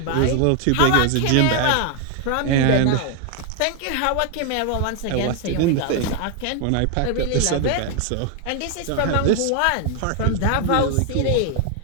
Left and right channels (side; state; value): both; different; correlation 0.00